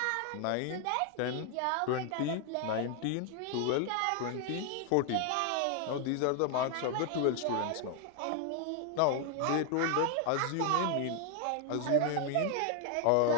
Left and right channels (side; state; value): both; different; correlation 0.00